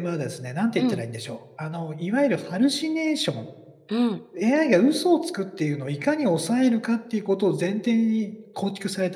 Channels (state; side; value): identical; both; correlation 1.00